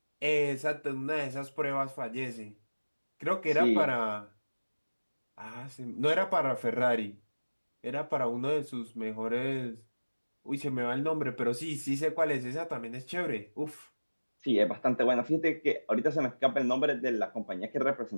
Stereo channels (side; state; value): both; inverted; correlation -1.00